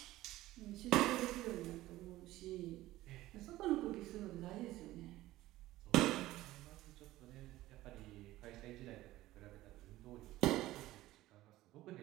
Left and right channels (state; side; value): quieter; left; 16.4 dB